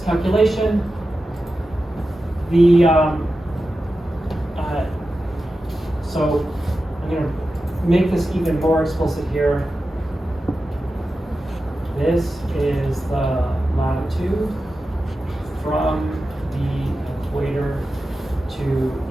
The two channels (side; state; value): both; normal; correlation 0.92